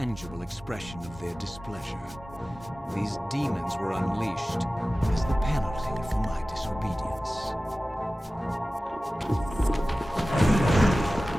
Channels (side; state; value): both; normal; correlation 0.96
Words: expression of their displeasure. These demons were unleashed as the penalty for my disobedience.